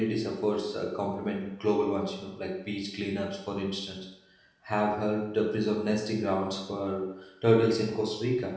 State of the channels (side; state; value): both; identical; correlation 1.00